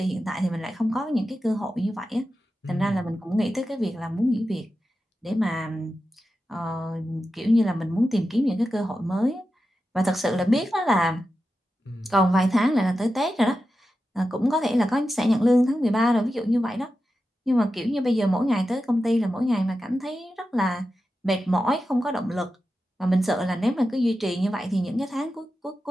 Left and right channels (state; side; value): normal; both; correlation 0.91